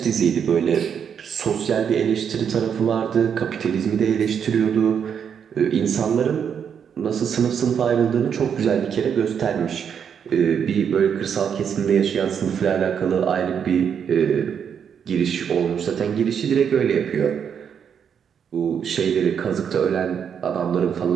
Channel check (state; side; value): quieter; left; 7.6 dB